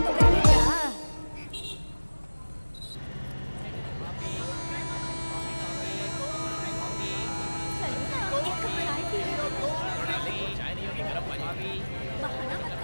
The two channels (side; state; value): both; inverted; correlation -1.00